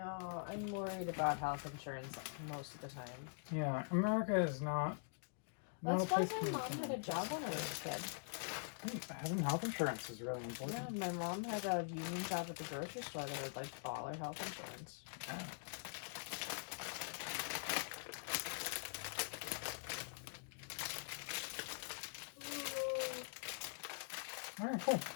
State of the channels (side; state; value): right; silent; digital silence